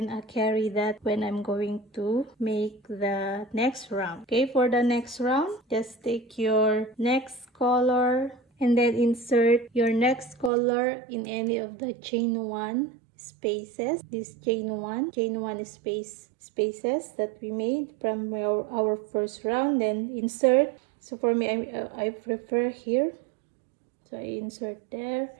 carry that when I'm going to make the next round. Okay, for the next round, just take your next color and then insert your next color in any of the chain 1 spaces. This chain 1 spaces that we made from our first round, then insert. So for me, I prefer here, so I insert there,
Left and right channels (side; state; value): left; drops out; at 10.5 s